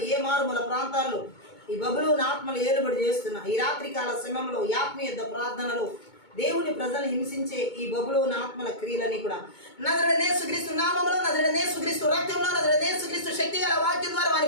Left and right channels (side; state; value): right; late; 2.2 ms